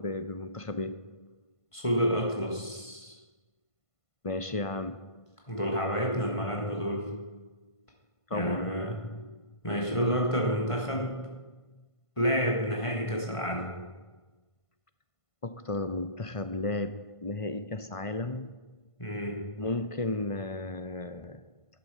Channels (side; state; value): right; late; 1.5 ms